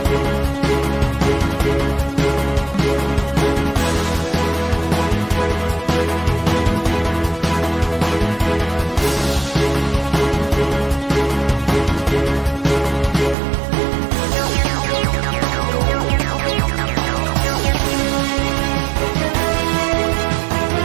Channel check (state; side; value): drops out; left; at 13.4 s